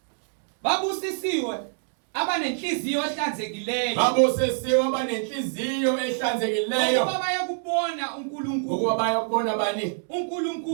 babusisiwe abanenhliziyo ehlanzekileyo ukuba bayakubona uNkulunkulu ukuba bayakubona bani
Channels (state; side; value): silent; left; digital silence